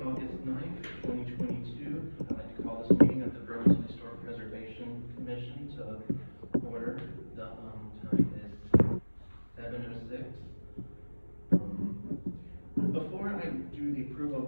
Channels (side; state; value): both; inverted; correlation -1.00